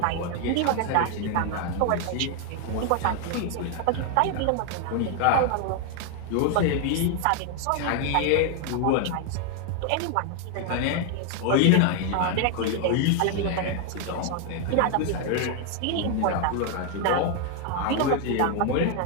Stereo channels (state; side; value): different; both; correlation 0.00